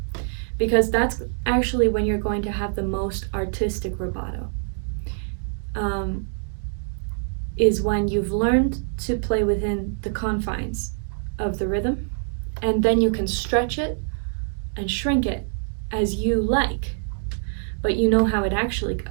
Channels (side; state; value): left; silent; digital silence